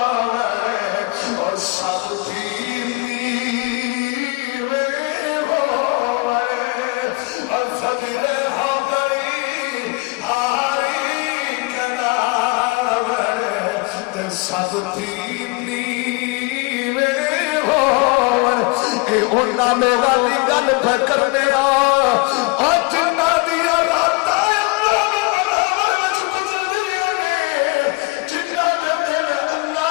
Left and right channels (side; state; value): right; quieter; 27.1 dB